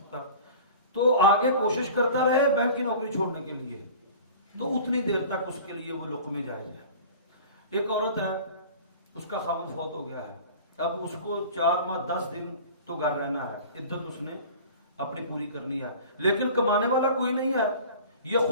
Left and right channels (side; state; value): both; inverted; correlation -0.41